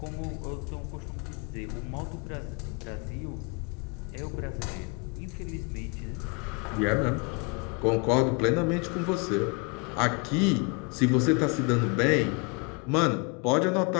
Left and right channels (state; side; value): quieter; right; 32.3 dB